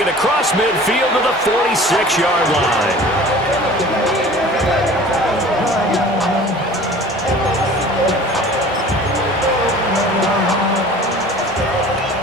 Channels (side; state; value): both; normal; correlation 0.44